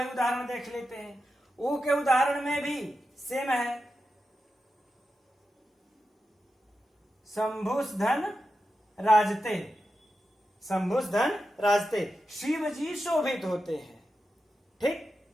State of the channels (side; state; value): both; normal; correlation 0.90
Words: उदाहरण देख लेते हैं। ऊ के उदाहरण में भी सेम है, शंभुस धन राजते, शंभुस धन राजते, शिव जी शोभित होते हैं। ठीक,